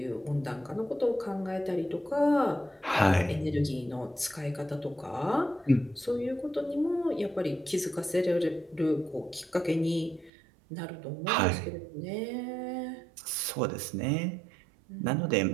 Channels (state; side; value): drops out; left; at 10.3 s